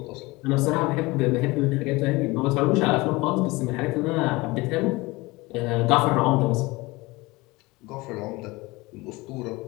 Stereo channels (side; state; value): right; quieter; 22.4 dB